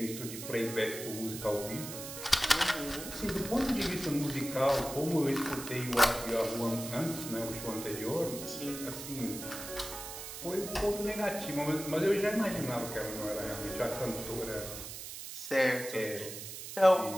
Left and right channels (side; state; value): right; noise; hiss, 9 dB below the sound